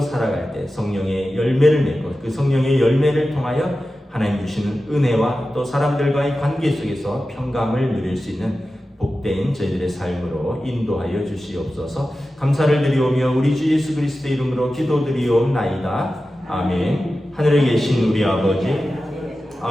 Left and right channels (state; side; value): normal; both; correlation 0.93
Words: 때 성령의 열매를 맺고 그 성령의 열매를 통하여 하나님 주시는 은혜와 또 사람들과의 관계 속에서 평강을 누릴 수 있는 복된 저희들의 삶으로 인도하여 주시옵소서. 감사를 드리오며 우리 주 예수 그리스도의 이름으로 기도드리옵나이다. 아멘. 하늘에 계신 우리